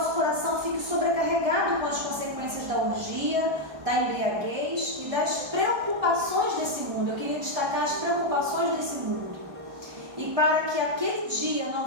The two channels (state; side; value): late; left; 1.6 ms